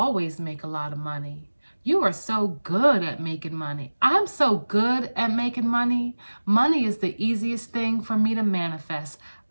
make a lot of money. You are so good at making money. I'm so good at making money. Money is the easiest thing for me to manifest.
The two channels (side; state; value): both; inverted; correlation -1.00